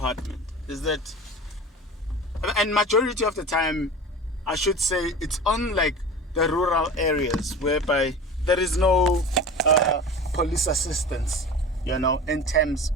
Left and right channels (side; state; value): both; normal; correlation 0.34